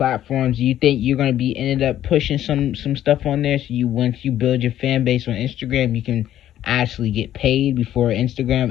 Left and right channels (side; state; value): right; quieter; 12.0 dB